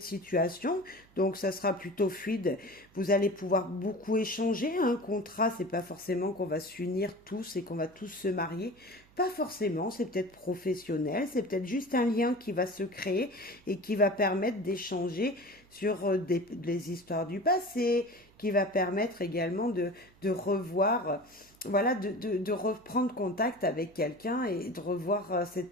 situation, donc ça sera plutôt fluide. Vous allez pouvoir beaucoup échanger. Un contrat, c'est pas forcément qu'on va s'unir tous et qu'on va tous se marier. Pas forcément, c'est peut-être professionnel, c'est peut-être juste un lien qui va se créer et qui va permettre d'échanger sur des histoires du passé, qui va permettre également de revoir, voilà, de reprendre contact avec quelqu'un et de revoir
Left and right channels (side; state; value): right; noise; hum, 29 dB below the sound